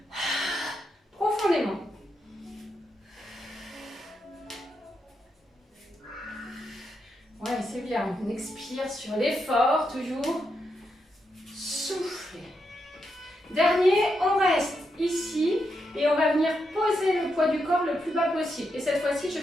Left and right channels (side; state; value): both; normal; correlation 0.83